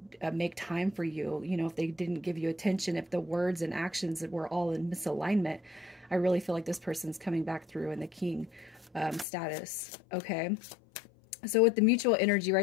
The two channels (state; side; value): drops out; right; at 9.2 s